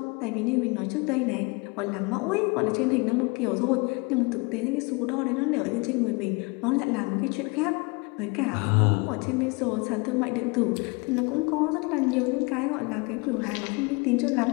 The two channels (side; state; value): right; quieter; 28.9 dB